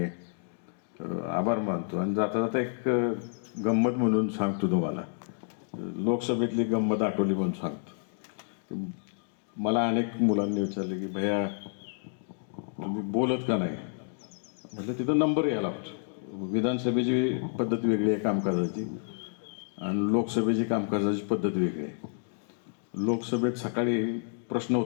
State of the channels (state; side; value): silent; right; digital silence